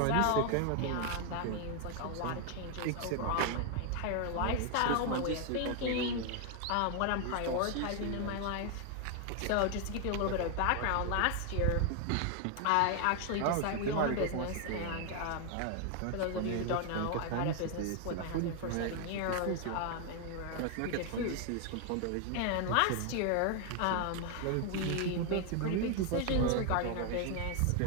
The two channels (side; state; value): both; different; correlation 0.00